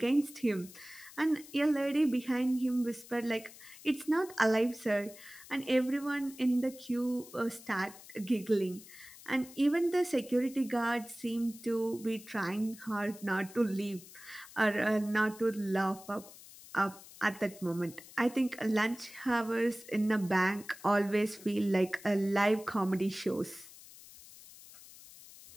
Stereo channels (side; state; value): left; noise; hiss, 19 dB below the sound